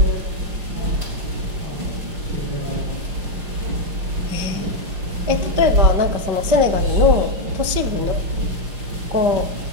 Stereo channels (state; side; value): late; left; 5.3 ms